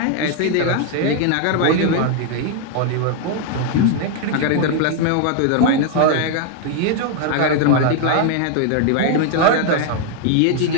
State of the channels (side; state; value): both; different; correlation 0.00